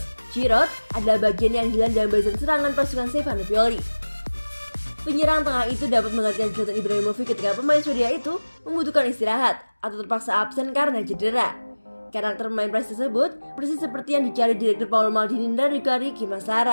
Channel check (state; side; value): inverted; both; correlation -1.00